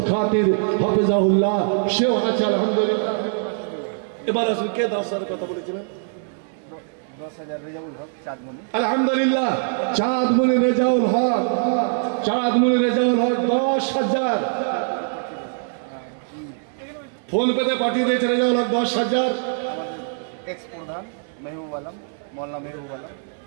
খাতির হাফেজাহুল্লাহ সেও আছে আলহামদুলিল্লাহ। এবার আসুন, কে 10,000 কথা বলেছিলেন? 10,000 রেজাউল হক চাঁদমণি। আলহামদুলিল্লাহ, চাঁদমণি রেজাউল হক, চাঁদমণি রেজাউল হক 10,000 ফোন পেতে পাঠিয়ে দিয়েছে। রেজাউল হক 10,000। এক্স প্রধান মেহবুব আলম, মোল্লা মেহবুব আলম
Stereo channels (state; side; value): silent; left; digital silence